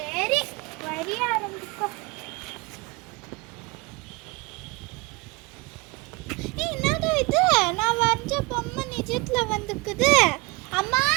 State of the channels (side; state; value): left; quieter; 25.5 dB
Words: வரிய ஆரம்பிக்கோ. என்னடா இது, நான் வரைஞ்ச பொம்மை நிஜத்துல வந்துக்குது. அம்மா